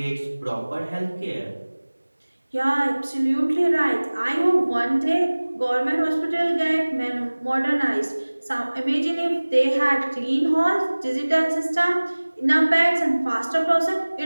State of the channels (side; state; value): both; inverted; correlation -1.00